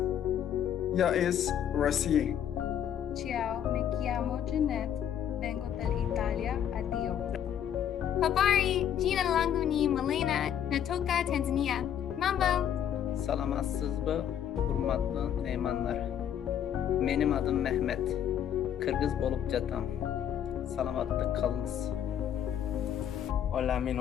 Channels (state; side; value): quieter; right; 9.6 dB